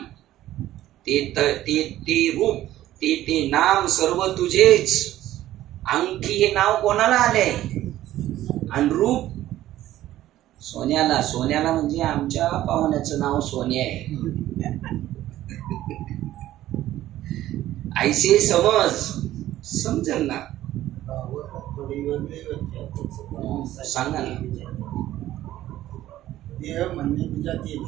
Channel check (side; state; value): left; quieter; 14.0 dB